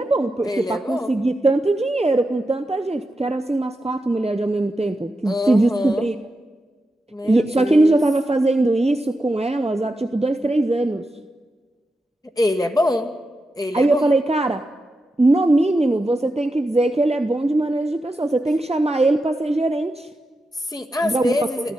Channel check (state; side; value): normal; both; correlation 0.88